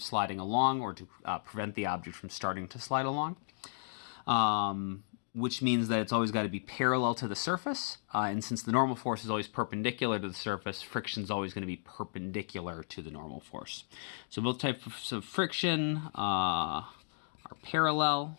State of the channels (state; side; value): silent; right; digital silence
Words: along or to prevent the object from starting to slide along. Which means that it's always got to be parallel to the surface. And since the normal force is always perpendicular to the surface, friction is always going to be perpendicular to the normal force. So both types of friction are